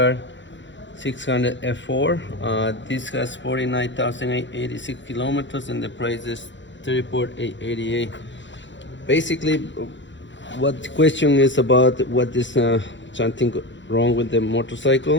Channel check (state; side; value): late; right; 0.54 ms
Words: This has 49,886 kilometers and the price is 34,888. Basically, what the question is about, what is something wrong with the